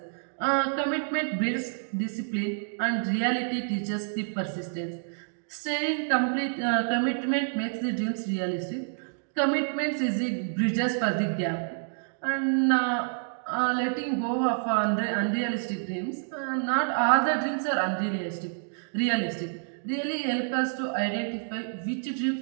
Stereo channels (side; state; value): left; silent; digital silence